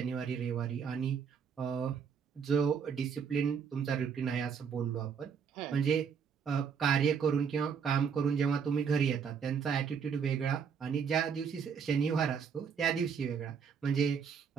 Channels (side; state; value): left; quieter; 6.7 dB